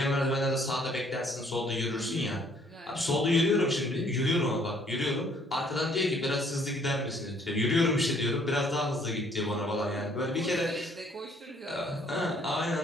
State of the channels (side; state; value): both; normal; correlation 0.62